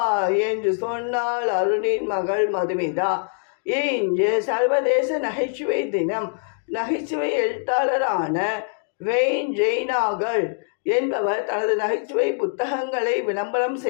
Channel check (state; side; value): silent; right; digital silence